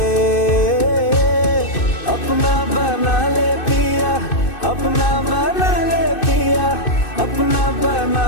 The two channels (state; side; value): late; right; 2.6 ms